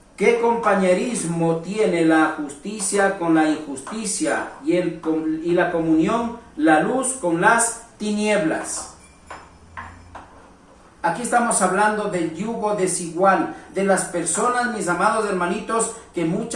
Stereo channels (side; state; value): both; identical; correlation 1.00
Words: ¿qué compañerismo tiene la justicia con la injusticia y la comunión, la luz con las tinieblas? Aquí estamos hablando del yugo desigual, de las personas, mis amados hermanitos, que